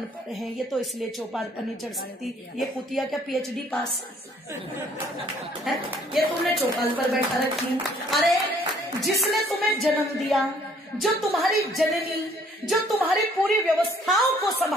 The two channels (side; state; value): both; normal; correlation 0.61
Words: हैं, ये तो इसलिए चौपाल पर नहीं चढ़ सकती, ये कुतिया क्या पीएचडी पास है, ये तुमने चौपाल पर बैठा रखी। अरे जिसने तुम्हें जन्म दिया, जो तुम्हारी जननी, जो तुम्हारी पूरी व्यवस्थाओं को